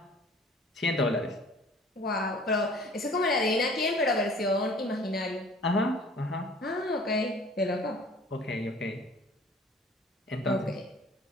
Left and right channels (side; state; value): both; normal; correlation 0.50